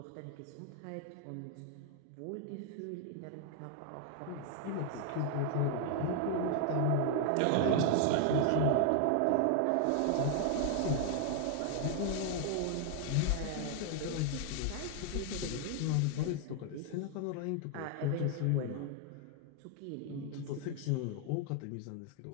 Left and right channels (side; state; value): both; different; correlation 0.00